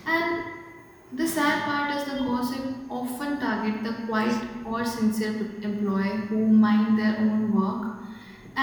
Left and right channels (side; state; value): both; identical; correlation 1.00